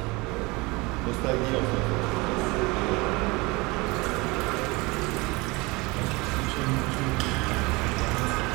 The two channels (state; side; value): quieter; left; 24.7 dB